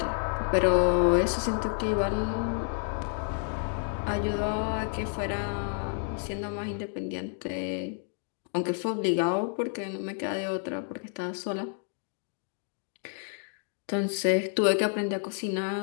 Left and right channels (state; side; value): silent; right; 58 dB below the other